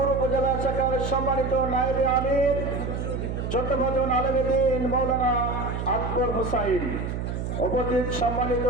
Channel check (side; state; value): right; noise; hum, 4 dB below the sound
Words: উপজেলা শাখার সম্মানিত নায়েবে আমির চট্টগ্রাম আলেমে দ্বীন মাওলানা আকবর হোসাইন, উপস্থিত সম্মানিত